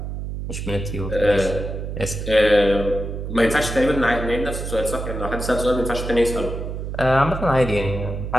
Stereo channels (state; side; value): noise; right; hum, 6 dB below the sound